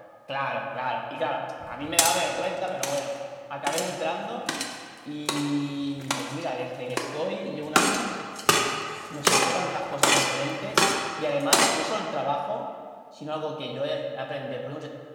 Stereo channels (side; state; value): both; identical; correlation 1.00